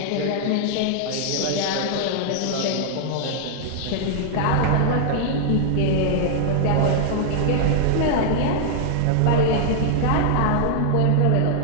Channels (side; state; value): both; different; correlation 0.00